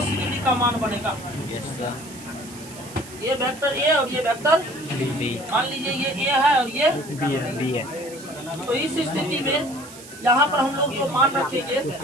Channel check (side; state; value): right; noise; hiss, 17 dB below the sound